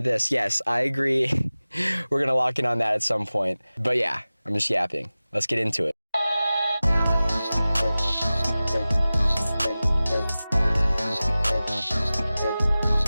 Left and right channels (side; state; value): both; inverted; correlation -0.97